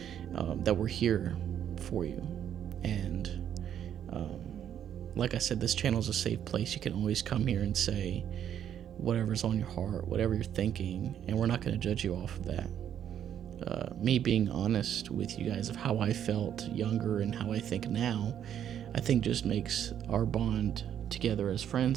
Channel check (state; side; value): quieter; left; 9.7 dB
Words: that we're here for you. And like I said, this channel is a safe place. You can always come here and say whatever's on your heart, whatever you're thinking, and we're not going to judge you off of that. Me being honest with you guys of how I felt younger and how I think now, I think just makes our bond together as